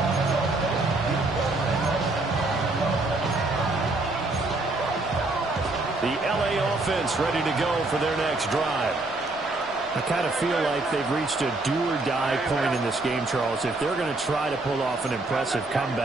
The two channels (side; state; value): left; quieter; 3.0 dB